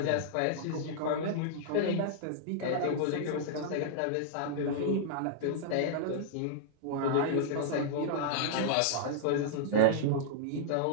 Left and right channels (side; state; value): both; different; correlation -0.02